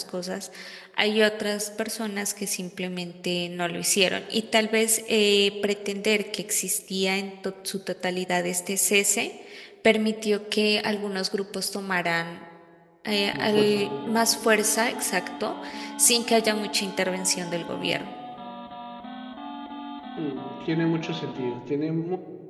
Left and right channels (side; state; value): both; identical; correlation 1.00